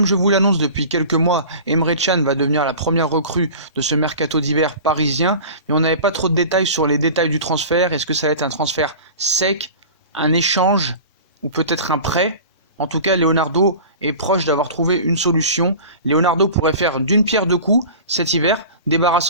je vous l'annonce depuis quelques mois, Emre Can va devenir la première recrue de ce Mercato d'hiver parisien. Mais on n'avait pas trop de détails sur les détails du transfert. Est-ce que ça va être un transfert sec, un échange ou peut-être un prêt? En tout cas, Leonardo est proche d'avoir trouvé une solution. Leonardo pourrait faire d'une pierre deux coups cet hiver,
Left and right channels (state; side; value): inverted; both; correlation -0.37